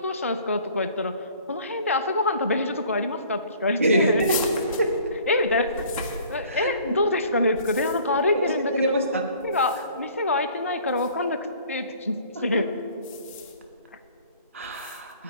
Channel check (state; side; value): inverted; both; correlation -0.52